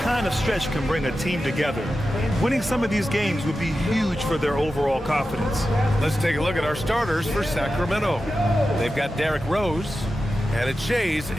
of stretch can bring a team together. Winning some of these games would be huge for their overall confidence. Let's take a look at our starters for Sacramento. They've got Derrick Rose, and it's Shays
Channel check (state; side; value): normal; both; correlation 0.92